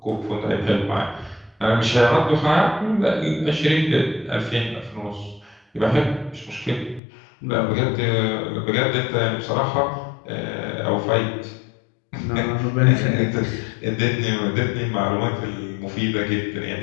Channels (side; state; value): right; drops out; at 7.0 s